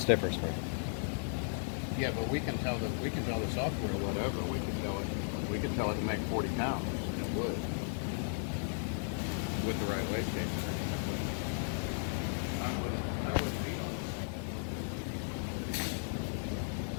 spring. Yeah, but we can tell the software whatever. We can tell it to make 40 pounds. It would with the right wastegate. I would be on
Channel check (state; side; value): silent; right; digital silence